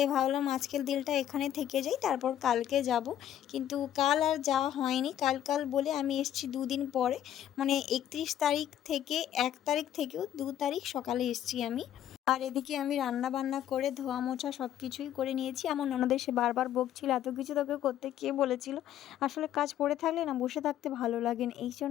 ভাবলাম আজকের দিনটা এখানে থেকে যাই, তারপর কালকে যাব। কিন্তু কাল আর যাওয়া হয়নি। কাল বলে আমি এসেছি 2 দিন পরে, মানে 31 তারিখ থেকে 1 তারিখ থেকেও 2 তারিখ সকালে এসেছি আমি। আর এদিকে আমি রান্না বান্না করে ধোয়া মোছা সব কিছুই করে নিয়েছি। আমার ননদ এসে বারবার বকছিল, এত কিছু তোকে করতে কে বলেছিল? আসলে কাজ পড়ে থাকলে না বসে থাকতে ভালো লাগে না, এই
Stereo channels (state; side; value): quieter; right; 11.2 dB